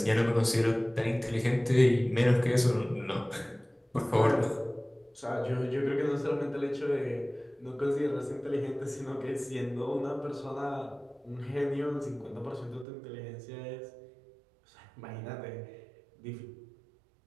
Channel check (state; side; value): drops out; left; at 12.9 s